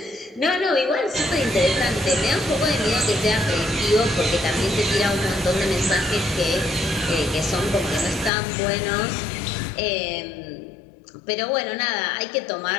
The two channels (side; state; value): right; drops out; at 8.3 s